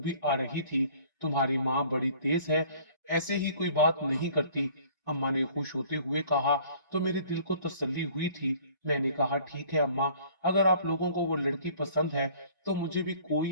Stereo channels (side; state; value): both; inverted; correlation -0.53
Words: आ रही थी। तुम्हारी माँ बड़ी तेज है, ऐसे ही कोई बात नहीं करती। अम्मा ने खुश होते हुए कहा तो मेरे दिल को तसल्ली हुई थी। मैंने कहा, ठीक है अम्मा, अगर आप लोगों को वो लड़की पसंद है तो मुझे भी